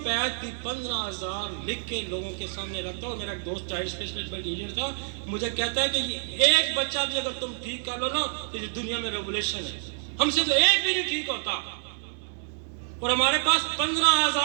भी 15,000 लिख के लोगों के सामने रखता। और मेरा एक दोस्त चाइल्ड स्पेशलिस्ट टीचर था, मुझे कहता है कि ये एक बच्चा भी अगर तुम ठीक कर लो ना, तो ये दुनिया में रेवोल्यूशन है। हमसे तो एक भी नहीं ठीक होता। और हमारे पास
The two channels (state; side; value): silent; left; 60 dB below the other